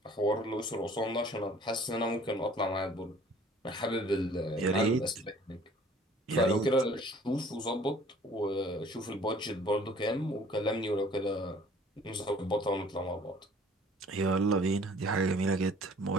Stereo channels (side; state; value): both; normal; correlation 0.53